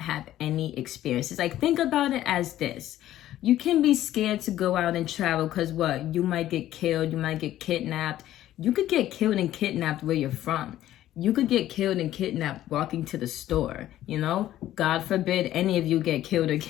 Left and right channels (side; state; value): right; quieter; 13.3 dB